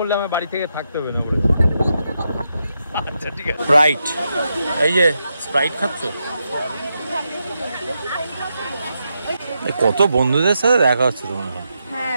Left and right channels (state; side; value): inverted; both; correlation -0.85